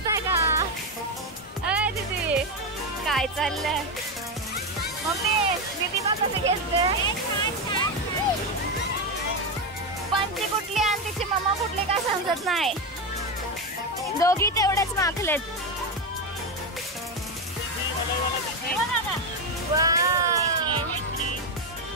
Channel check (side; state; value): both; normal; correlation 0.10